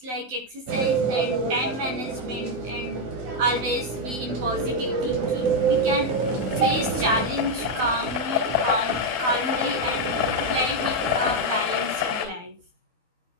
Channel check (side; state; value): left; late; 12 ms